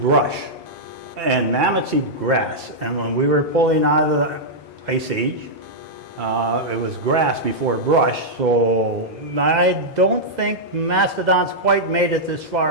and mammoths eat grass. And when we were pulling out of the Ice Age, it was grass before brush, so I don't think mastodons quite made it this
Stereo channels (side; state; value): both; normal; correlation -0.07